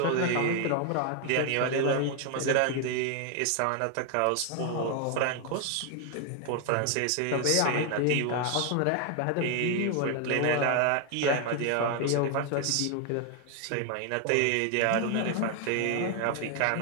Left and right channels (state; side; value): different; both; correlation 0.01